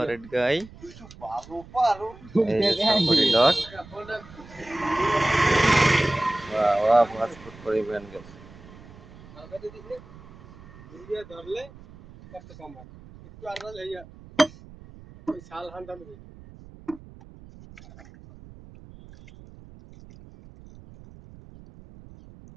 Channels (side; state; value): right; noise; rumble, 20 dB below the sound